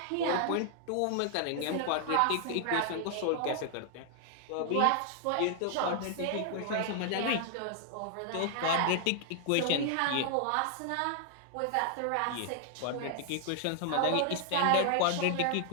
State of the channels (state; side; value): different; both; correlation 0.00